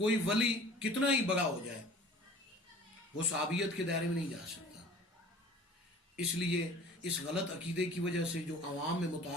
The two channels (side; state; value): both; normal; correlation 0.46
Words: ولی کتنا ہی بڑا ہو جائے وہ صحابیت کے دائرے میں نہیں جا سکتا۔ اس لیے اس غلط عقیدے کی وجہ سے جو عوام میں